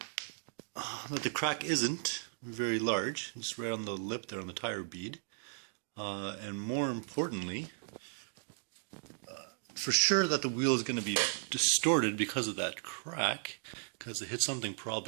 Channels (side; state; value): left; silent; digital silence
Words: that the crack isn't very large, just right on the lip there on the tire bead. And more importantly, for sure that the wheel is going to be distorted because of that crack, because it hit something,